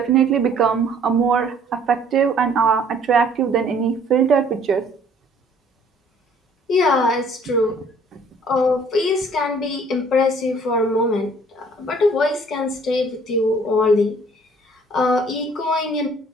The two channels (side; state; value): both; normal; correlation 0.57